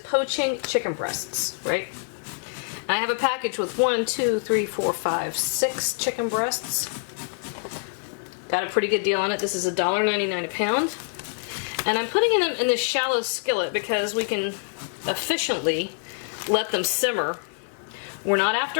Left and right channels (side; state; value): right; silent; digital silence